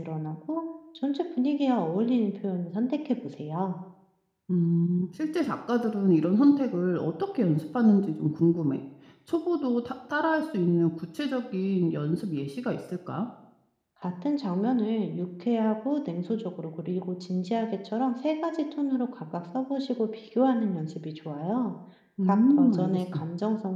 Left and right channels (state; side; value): identical; both; correlation 1.00